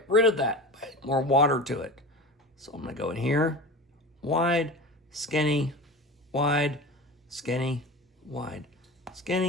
rid of that, add more water to it. So I'm gonna go in here, wide, skinny, wide, skinny, wide,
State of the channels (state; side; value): normal; both; correlation 0.31